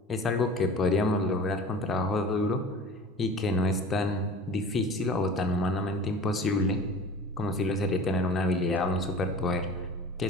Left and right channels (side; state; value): both; normal; correlation 0.40